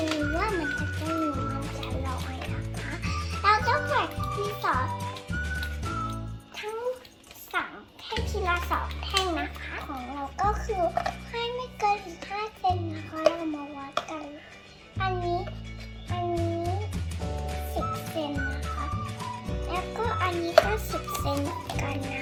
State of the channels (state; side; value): identical; both; correlation 1.00